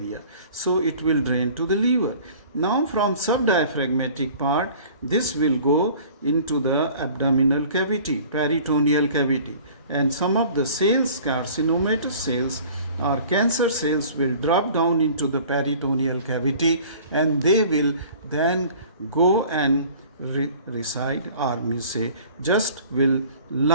So it will drain to the liver. Now from subdiaphragmatic part, this will go into the abdominal cavity, peritoneal cavity. And some of the cells, carcinomatous cells or cancer cells, will drop down into the peritoneal cavity, and they will then go and reside, or just will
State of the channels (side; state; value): both; inverted; correlation -0.47